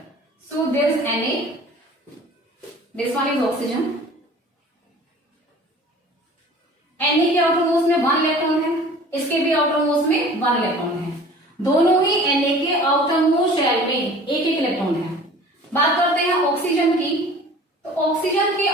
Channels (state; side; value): normal; both; correlation 0.45